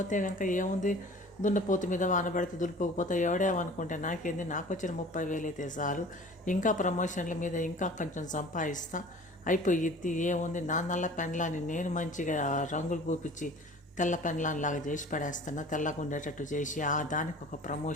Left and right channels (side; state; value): both; normal; correlation 0.44